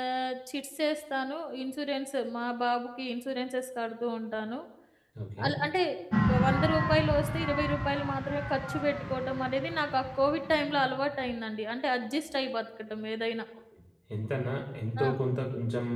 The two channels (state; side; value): identical; both; correlation 1.00